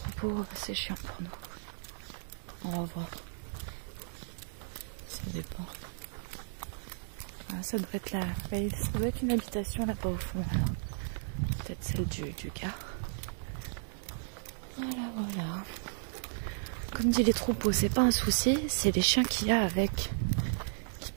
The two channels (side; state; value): left; silent; digital silence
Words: c'est chiant pour nous. On va voir. Ça dépend. Ah, ça doit être là. Ça doit être une habitation là-bas au fond. Peut-être celle du gars. Voilà, voilà. Comme dit les troupeaux, c'est pas un souci, c'est les chiens qu'il y a avec. Qui